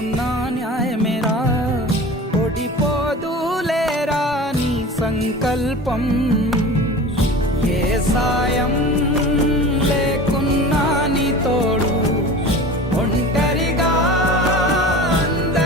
న్యాయమేరా. ఓడిపోదులేరా నీ సంకల్పం. ఏ సాయం లేకున్నా నీ తోడు, ఒంటరిగా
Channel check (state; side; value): normal; both; correlation 0.36